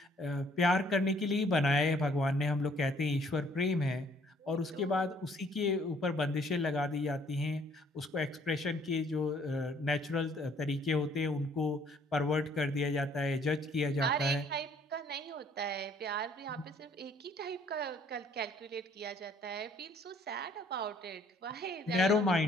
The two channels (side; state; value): both; normal; correlation 0.61